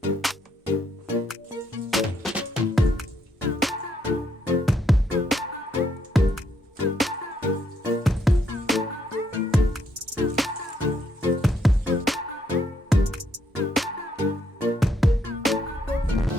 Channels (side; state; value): both; normal; correlation 0.73